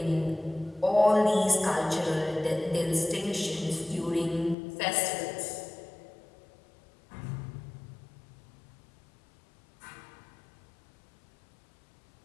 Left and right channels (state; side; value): drops out; right; at 4.5 s